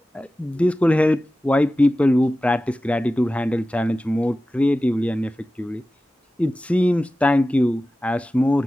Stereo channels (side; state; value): both; normal; correlation 0.95